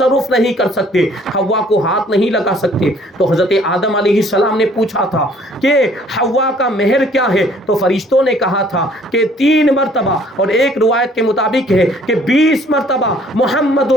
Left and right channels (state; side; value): normal; both; correlation 0.58